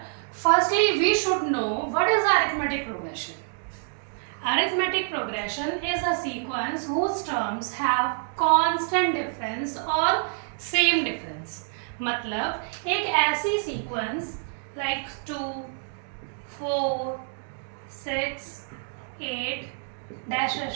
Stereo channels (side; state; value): left; silent; digital silence